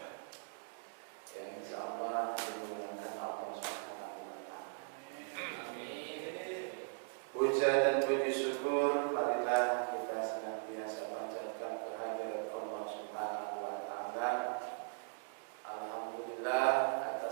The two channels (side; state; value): left; silent; digital silence